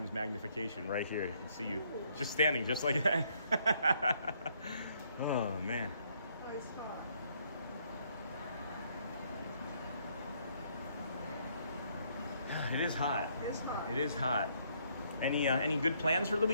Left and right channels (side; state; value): both; inverted; correlation -0.69